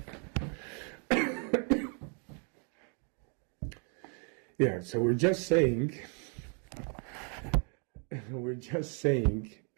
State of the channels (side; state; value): left; quieter; 38.9 dB